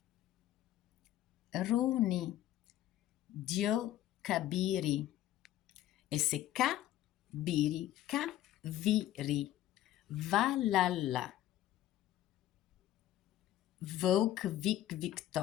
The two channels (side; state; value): right; quieter; 13.4 dB